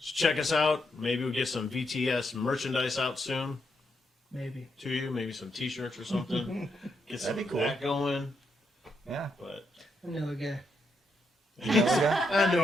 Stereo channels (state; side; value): normal; both; correlation 0.80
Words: check us out. Maybe we'll get some VTS merchandise out soon Maybe. to you. Maybe some T-shirts or something. Get some That'd of be cool. that going. Yeah. But I know a guy. I